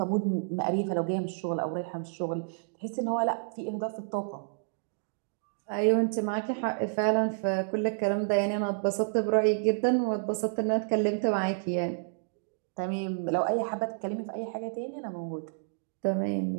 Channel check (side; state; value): left; silent; digital silence